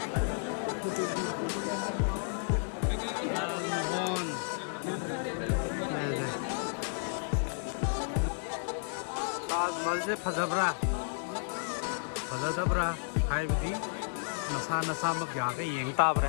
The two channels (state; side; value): silent; right; digital silence